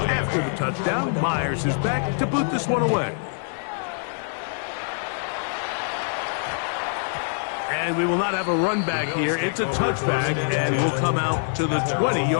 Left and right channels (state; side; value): silent; right; 62 dB below the other